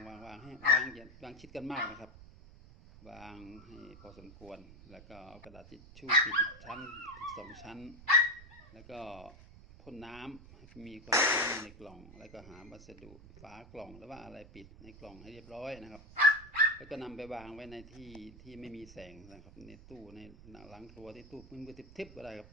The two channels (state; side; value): noise; right; rumble, 19 dB below the sound